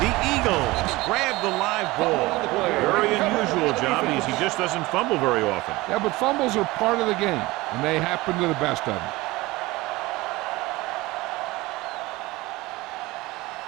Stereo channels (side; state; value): left; quieter; 20.6 dB